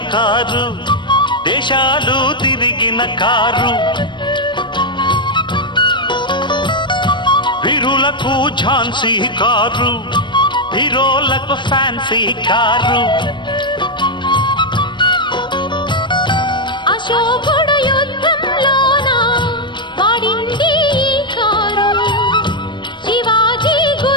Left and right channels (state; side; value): late; right; 0.22 ms